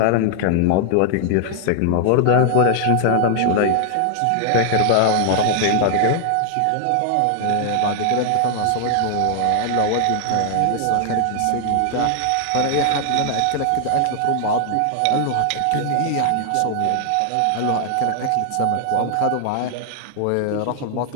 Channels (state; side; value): different; both; correlation 0.00